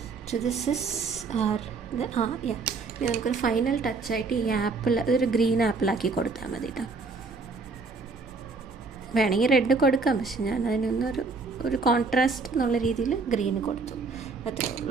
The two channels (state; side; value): quieter; left; 4.2 dB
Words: So this is our yeah. ഇനി നമുക്കൊരു ഫൈനൽ ടച്ചായിട്ട് ഈ ആപ്പിൾ ഇതൊരു ഗ്രീൻ ആപ്പിളാക്കി കൊടുത്താൽ മതി കേട്ടോ. വേണമെങ്കിൽ റെഡ് കൊടുക്കാം, പക്ഷെ ഞാൻ അതിനൊന്നൊരു കോൺട്രാസ്റ്റ് എന്നുള്ള രീതിയിൽ ഗ്രീൻ കൊടുത്തു. അത്രേ